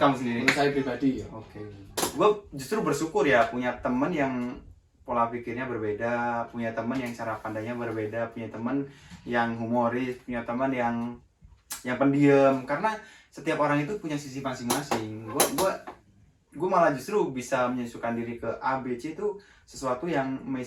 sendiri? Menurut saya pribadi ya. Oke. Gue justru bersyukur ya punya teman yang pola pikirnya berbeda, punya teman yang cara pandangnya berbeda, punya teman yang humoris, punya teman yang pendiam, karena setiap orang itu punya sisi masing-masing. Gue malah justru bisa menyesuaikan diri ke A, B, C itu sesuatu yang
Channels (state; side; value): identical; both; correlation 1.00